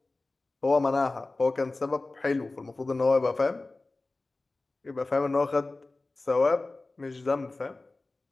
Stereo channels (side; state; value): right; quieter; 3.2 dB